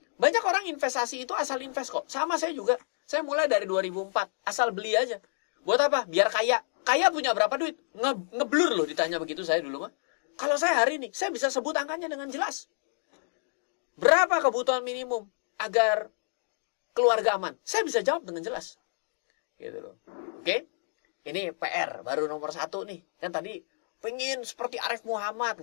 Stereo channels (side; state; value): right; silent; digital silence